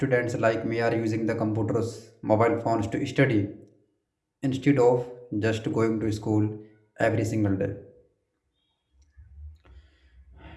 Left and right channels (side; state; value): both; identical; correlation 1.00